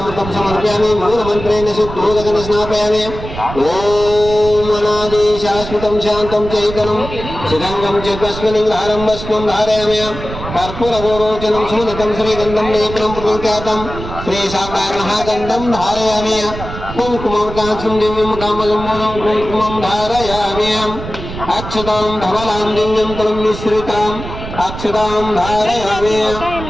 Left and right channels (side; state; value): right; noise; rumble, 10 dB below the sound